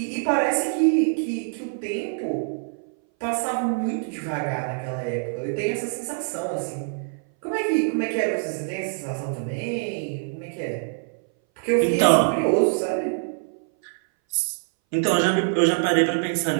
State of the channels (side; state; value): left; silent; 60 dB below the other